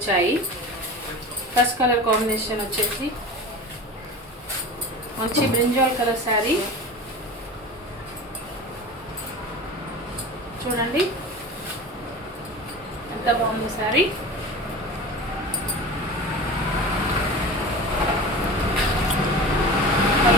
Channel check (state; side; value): normal; both; correlation 0.33